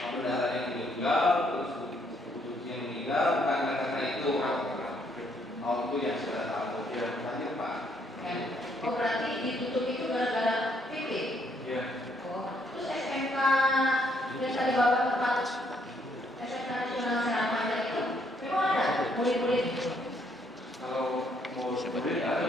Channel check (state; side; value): normal; both; correlation 0.70